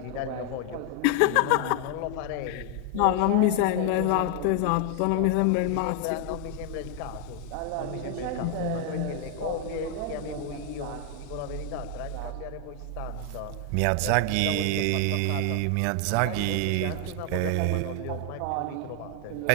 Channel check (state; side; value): different; both; correlation 0.00